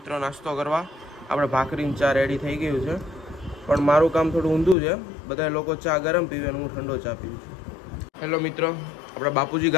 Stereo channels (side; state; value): right; drops out; at 4.8 s